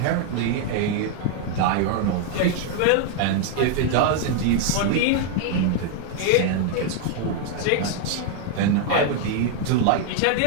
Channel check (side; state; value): both; different; correlation 0.00